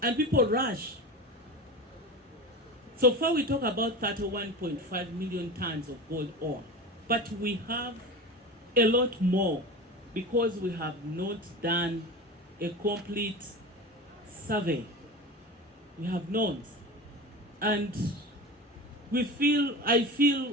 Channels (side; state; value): both; normal; correlation 0.29